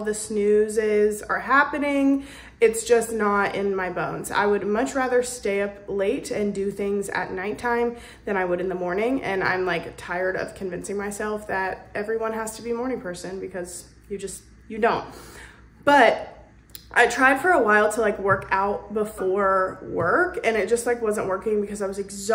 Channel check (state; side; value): identical; both; correlation 1.00